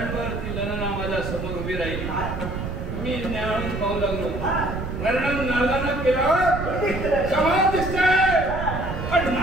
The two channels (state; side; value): noise; right; rumble, 5 dB below the sound